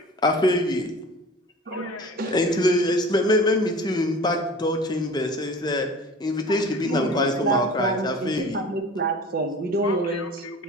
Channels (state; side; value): normal; both; correlation 0.41